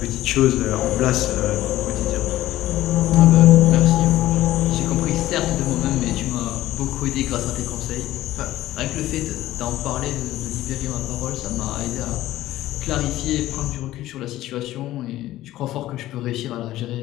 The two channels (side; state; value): right; quieter; 15.1 dB